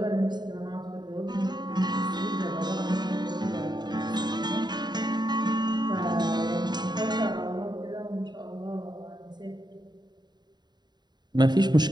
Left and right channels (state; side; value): late; left; 0.21 ms